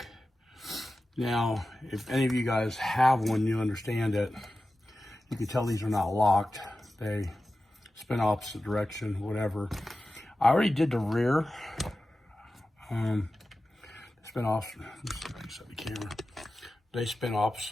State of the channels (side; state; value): both; normal; correlation 0.94